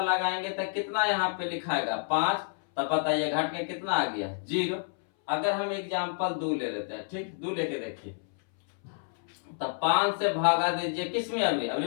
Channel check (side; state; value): right; silent; 58 dB below the other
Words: लगाएंगे तो कितना यहाँ पे लिखाएगा? 5। तब बताइए घट के कितना आ गया? 0। अगर हम एग्जाम्पल 2 ले लेते हैं, ठीक, 2 लेके देखिए। तो 5 से भागा दीजिए किसमें?